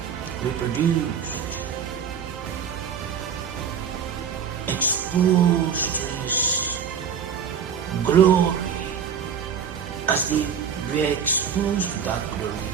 reproduced, exposed to His glory. As they were exposed to that glory,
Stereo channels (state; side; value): quieter; left; 7.2 dB